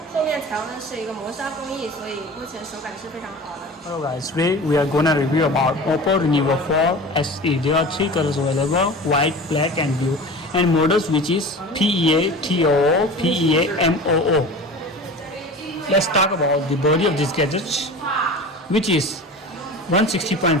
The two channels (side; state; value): both; normal; correlation 0.36